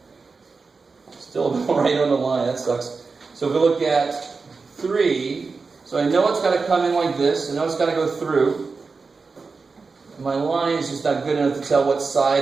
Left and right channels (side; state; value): left; quieter; 4.5 dB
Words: Still right on the line, that sucks. So if we look at 3, so I know it's got to come in like this. I know it's got to go through. My line is just not good enough to tell what